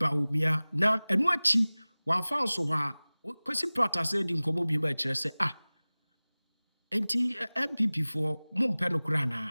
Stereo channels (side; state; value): both; inverted; correlation -0.99